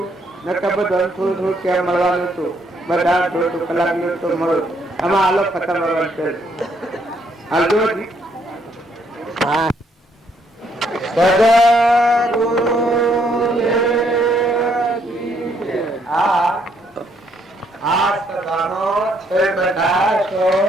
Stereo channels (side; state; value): both; normal; correlation 0.70